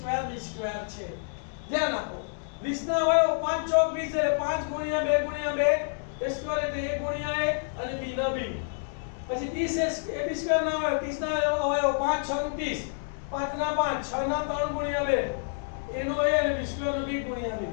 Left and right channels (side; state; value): right; silent; digital silence